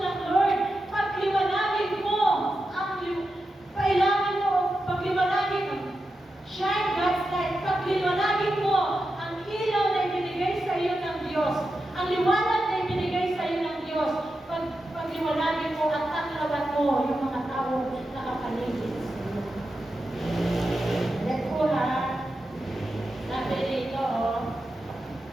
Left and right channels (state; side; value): normal; both; correlation 0.89